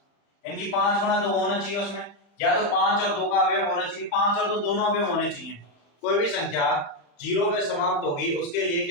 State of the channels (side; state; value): right; late; 35 ms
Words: इनकी 5 गुणा 2 होना चाहिए उसमें, या तो 5 और 2 का अवयव होना चाहिए, 5 और 2 दोनों अवयव होने चाहिए। कोई भी संख्या 0 पे समाप्त होगी उसके लिए